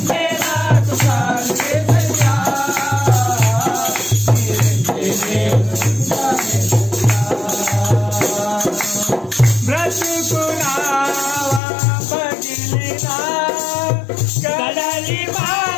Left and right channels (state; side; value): drops out; right; at 11.6 s